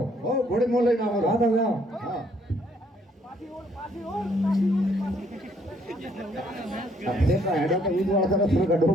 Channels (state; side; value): normal; both; correlation 0.66